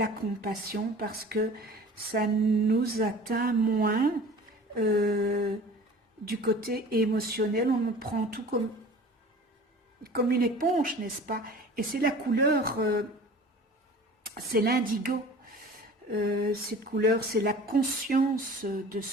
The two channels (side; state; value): both; normal; correlation 0.42